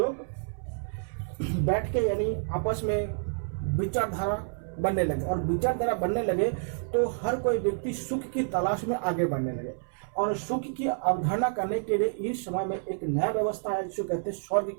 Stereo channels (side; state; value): left; silent; 59 dB below the other